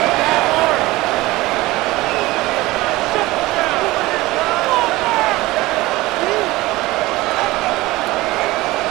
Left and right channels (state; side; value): quieter; left; 19.4 dB